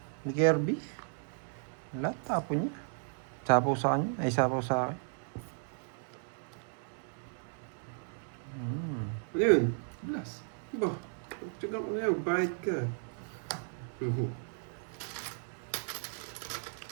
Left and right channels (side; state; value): left; silent; 55 dB below the other